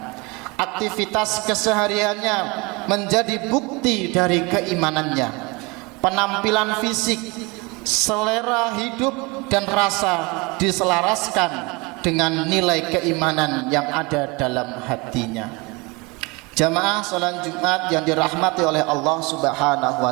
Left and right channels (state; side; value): quieter; left; 26.5 dB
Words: Aktivitas kesehariannya menjadi bukti dari keimanannya. Penampilan fisik, selera hidup dan rasa diselaraskan dengan nilai keimanan yang ada dalam hatinya. Jamaah salat Jumat yang dirahmati oleh Allah Subhanahu